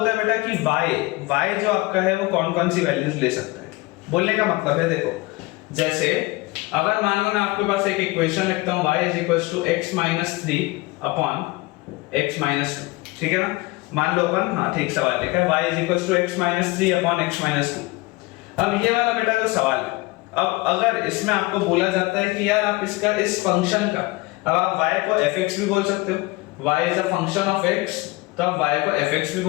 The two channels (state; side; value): quieter; right; 22.7 dB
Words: है बेटा कि y जो आपका है वो कौन कौन सी वैल्यूज ले सकता है। बोलने का मतलब है, देखो जैसे अगर मान लो मैं आपके पास एक इक्वेशन लिखता हूं y = x - 3 अपॉन x - 2, ठीक है ना। मान लो अपन, हाँ ठीक सवाल लिखा है, y = x - 3 अपॉन x - 2। अब ये वाला बेटा जो सवाल है, अब अगर इसमें आपको बोला जाता है कि यार आप इसका इस फंक्शन का, अब आप y को fx भी बोल सकते हो, y is a function of x, तो आप y को fx भी